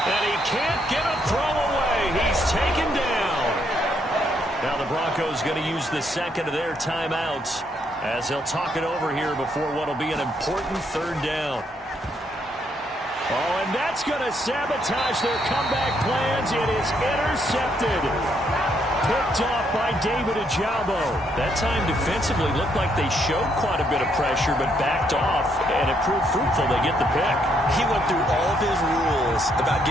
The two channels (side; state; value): both; normal; correlation 0.73